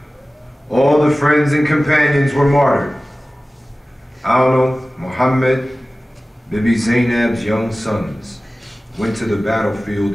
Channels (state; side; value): normal; both; correlation 0.97